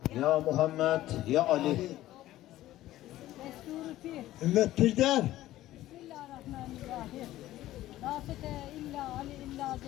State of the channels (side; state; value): right; quieter; 14.9 dB